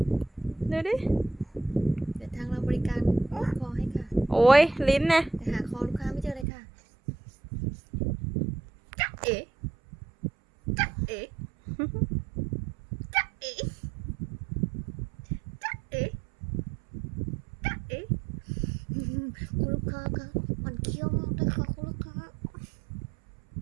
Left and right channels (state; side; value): drops out; left; at 6.5 s